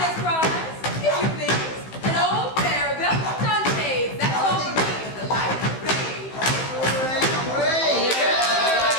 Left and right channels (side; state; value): right; late; 15 ms